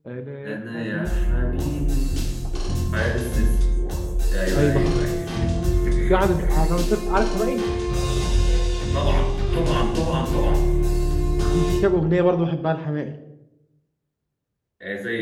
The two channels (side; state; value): both; identical; correlation 1.00